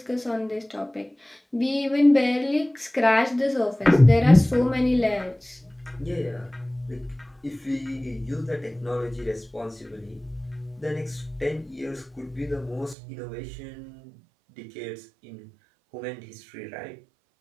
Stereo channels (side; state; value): left; drops out; at 13.0 s